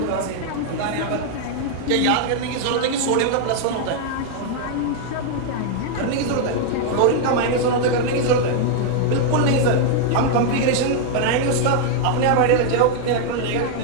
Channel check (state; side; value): different; both; correlation 0.00